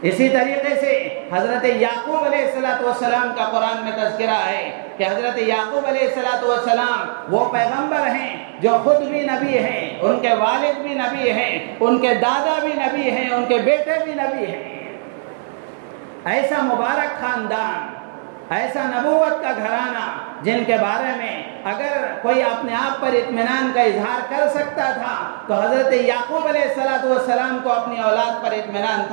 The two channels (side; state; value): left; silent; digital silence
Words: اسی طریقے سے حضرت یعقوب علیہ السلام کا قرآن میں تذکرہ ہے کہ حضرت یعقوب علیہ السلام وہ پیغمبر ہیں جو خود بھی نبی ہیں، ان کے والد بھی نبی ہیں، ان کے دادا بھی نبی ہیں، ان کے بیٹے بھی نبی ہیں۔ ایسا مبارک خاندان، ایسا نبوت کا گھرانہ جن کے بارے میں اگر کوئی اپنے آپ پر اطمینان کا اظہار کر سکتا تھا تو حضرت یعقوب علیہ السلام کو اپنی اولاد پر اطمینان